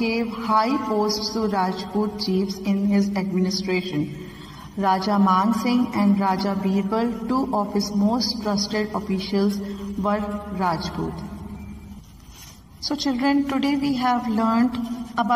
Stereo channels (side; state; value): both; identical; correlation 1.00